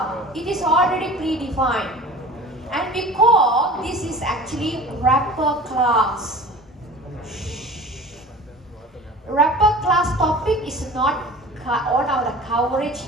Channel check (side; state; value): both; normal; correlation 0.40